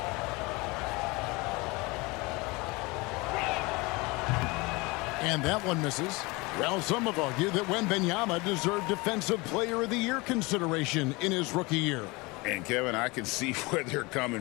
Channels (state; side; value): quieter; right; 24.9 dB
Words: And that one misses. Well, some have argued that Wembanyama deserved Defensive Player of the Year consideration in his rookie year. And, Kevin, I can see where they're